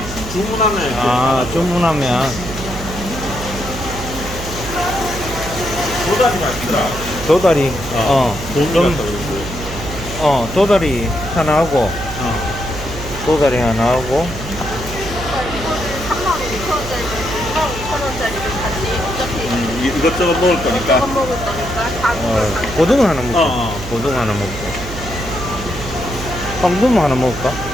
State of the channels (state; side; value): noise; right; hum, 10 dB below the sound